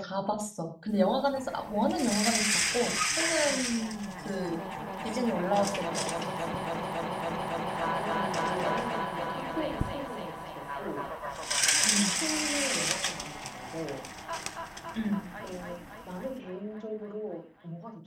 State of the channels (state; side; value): identical; both; correlation 1.00